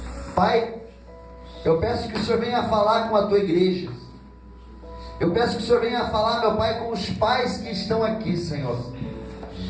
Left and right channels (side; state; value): both; identical; correlation 1.00